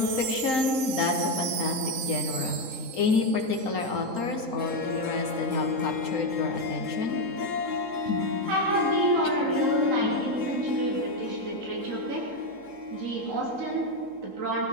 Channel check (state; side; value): late; left; 3.8 ms